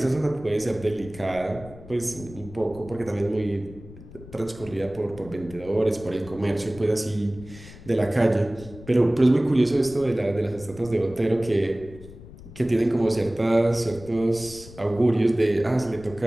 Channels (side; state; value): left; noise; rumble, 17 dB below the sound